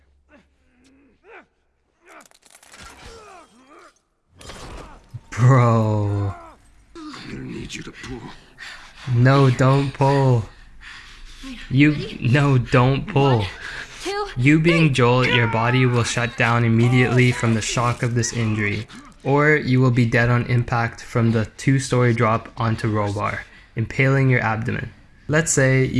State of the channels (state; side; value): identical; both; correlation 1.00